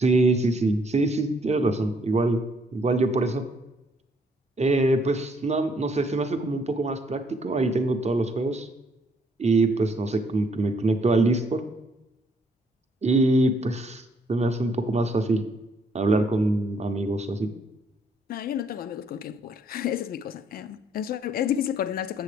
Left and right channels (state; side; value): normal; both; correlation 0.68